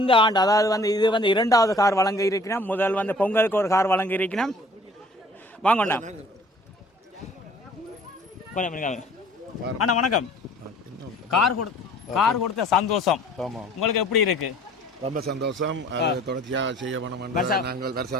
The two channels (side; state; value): both; normal; correlation 0.52